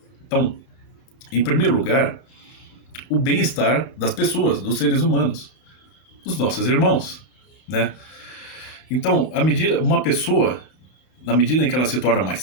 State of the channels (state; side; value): late; right; 31 ms